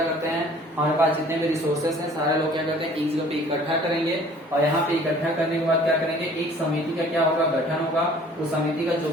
करते हैं, हमारे पास जितने भी रिसोर्सेस हैं सारे लोग क्या करते हैं एक जगह पे इकट्ठा करेंगे और यहाँ पे इकट्ठा करने के बाद क्या करेंगे, एक समिति का क्या होगा, गठन होगा। उस समिति का जो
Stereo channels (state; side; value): normal; both; correlation 0.52